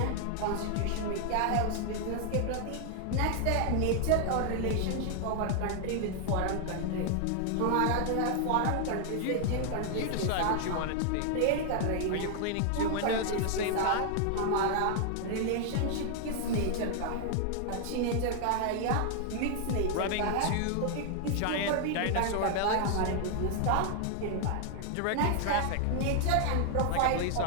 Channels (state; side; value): different; both; correlation 0.00